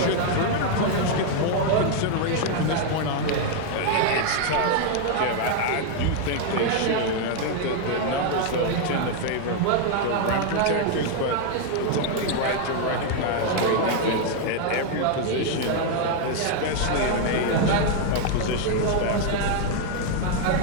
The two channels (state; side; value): different; both; correlation 0.00